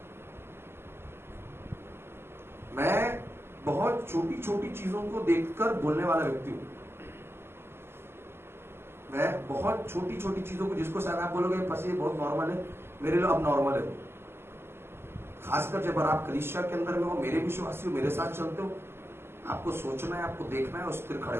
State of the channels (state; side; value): late; left; 0.12 ms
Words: मैं बहुत छोटी छोटी चीजों को देखकर बोलने वाला व्यक्ति हूं। मैं बहुत छोटी छोटी चीजों को, जिसको शायद आप बोलोगे बस ये बहुत नॉर्मल है, मेरे लिए अब नॉर्मल है। खासकर जब आप कलीसिया के अंदर में हो, मेरे विश्वासी हो, मेरे साथ चलते हो, आपको सोचना है, आपको देखना है और स्थिर खड़े